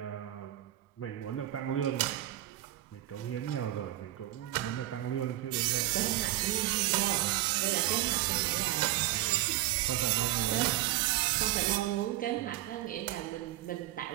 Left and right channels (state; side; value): quieter; left; 14.9 dB